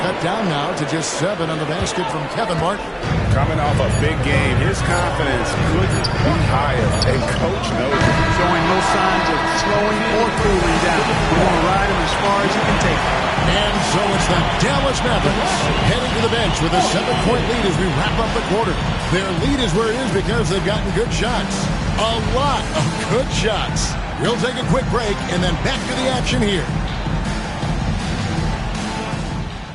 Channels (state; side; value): identical; both; correlation 1.00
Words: down now to just 7 on the basket from Kevin Martin. Coming off a big game, his confidence couldn't be higher, and Coach knows it. Showing no signs of slowing or cooling down. You want to ride him as far as you can take him. And so it's the Dallas Mavericks heading to the bench with a 7-point lead as we wrap up the quarter. Their lead is where it is because they've gotten good shots. A lot of good shots. We'll take a quick break and then back to the action here.